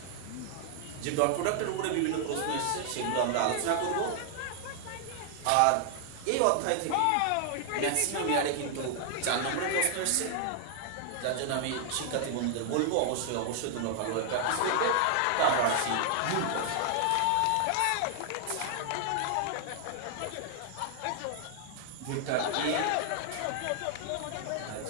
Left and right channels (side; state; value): both; different; correlation 0.00